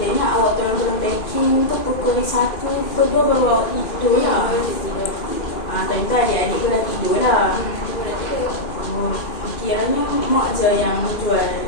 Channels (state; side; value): late; right; 2.5 ms